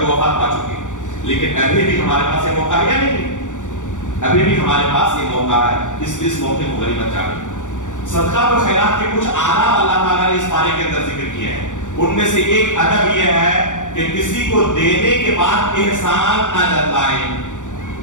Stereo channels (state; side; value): late; right; 0.86 ms